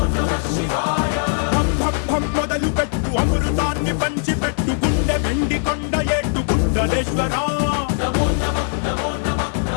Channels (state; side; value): silent; right; 60 dB below the other